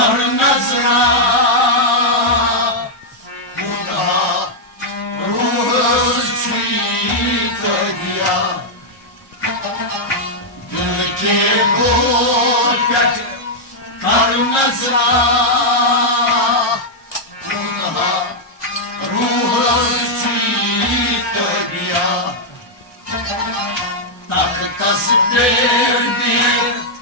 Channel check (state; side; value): normal; both; correlation -0.04